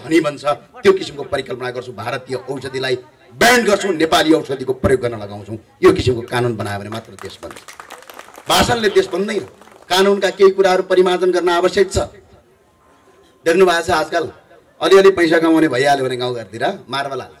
धनी बन्छ। त्यो किसिमको परिकल्पना गर्छौँ। भारतीय औषधिलाई ब्यान गर्छौँ, नेपाली औषधिको प्रयोग गर्न लगाउँछौँ। यो किसिमको कानुन बनायो भने मात्र देश बन्छ। भाषणले देश बन्दैन। कानुनका केही कुराहरू परिमार्जन गर्न आवश्यक छ। देख्नु भएको छ आजकल अलिअलि पैसा कमाउने भइहाल्यो भने गाउँघरतिर मार्बल हाल्छ।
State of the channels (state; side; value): identical; both; correlation 1.00